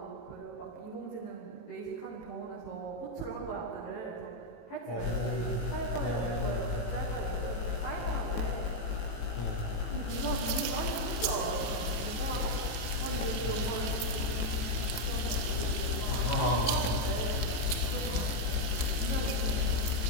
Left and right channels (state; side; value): late; right; 18 ms